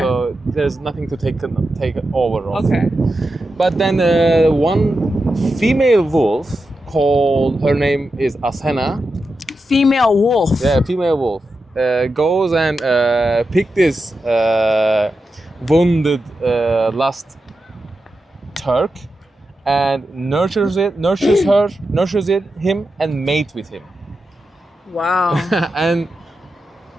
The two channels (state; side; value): normal; both; correlation 0.89